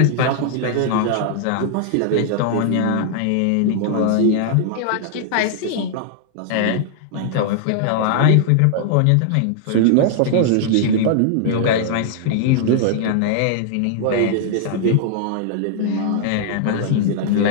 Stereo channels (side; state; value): both; different; correlation -0.01